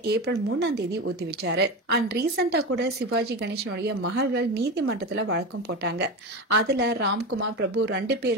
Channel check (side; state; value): both; normal; correlation 0.22